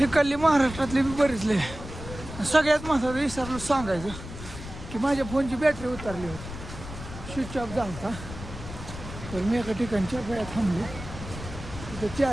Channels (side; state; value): left; noise; rumble, 11 dB below the sound